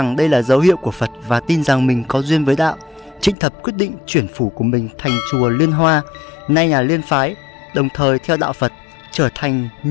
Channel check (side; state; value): right; drops out; at 3.4 s